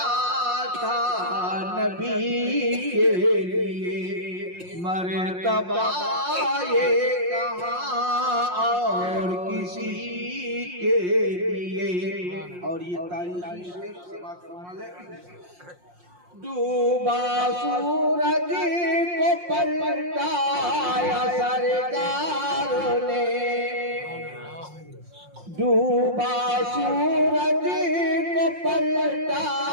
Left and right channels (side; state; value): left; late; 5.6 ms